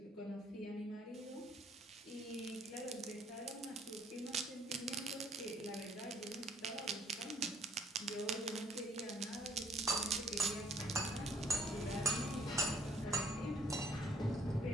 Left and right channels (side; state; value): both; normal; correlation 0.62